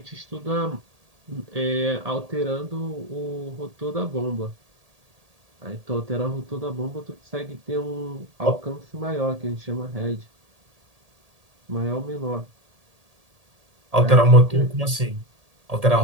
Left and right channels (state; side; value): late; left; 1.8 ms